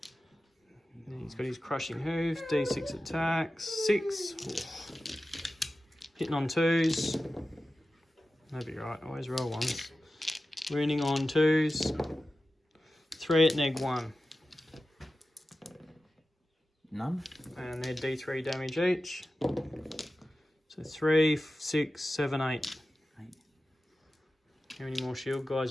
He's got his crushing hoof. D6 attacks. 6. Hitting on 2s. That'd be right. Always roll 1s. Wounding on 2s. 3 at -1. none. And they're D3 damage each. So 3, 6, 7, 8. 8. How many more shield guys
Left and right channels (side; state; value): both; normal; correlation 0.94